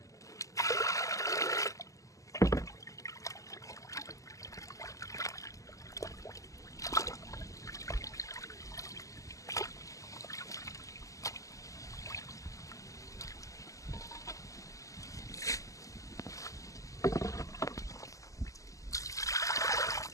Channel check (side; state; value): right; late; 0.16 ms